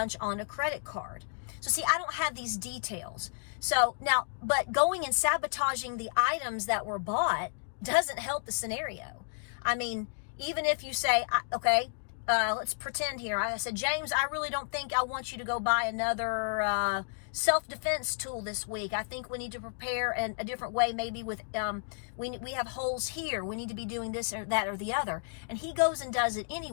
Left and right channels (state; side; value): silent; right; digital silence